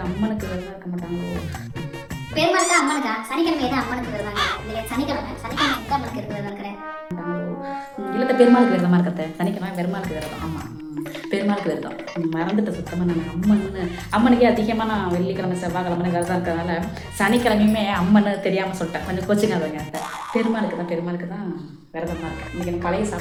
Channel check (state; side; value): identical; both; correlation 1.00